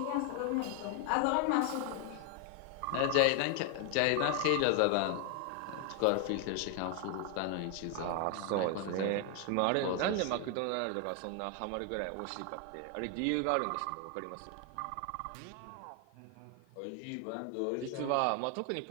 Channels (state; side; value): different; both; correlation 0.01